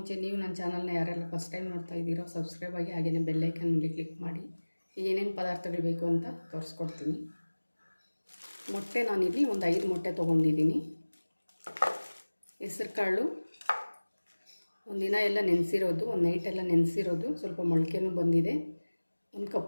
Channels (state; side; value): inverted; both; correlation -1.00